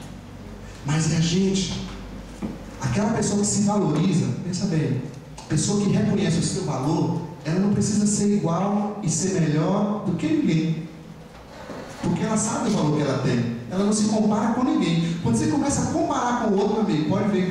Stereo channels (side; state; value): both; identical; correlation 1.00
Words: Mas é a gente, aquela pessoa que se valoriza, pensa bem, pessoa que reconhece o seu valor, ela não precisa ser igual e ser melhor do que ninguém, porque ela sabe o valor que ela tem, ela não se compara com ninguém. Quando você começa a comparar com o outro, amigo, pode ver